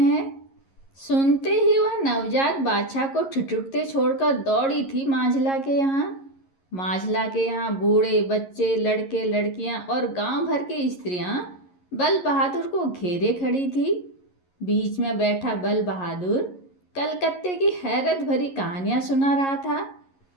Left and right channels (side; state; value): right; late; 11 ms